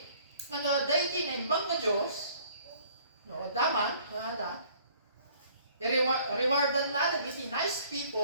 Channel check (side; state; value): both; inverted; correlation -0.57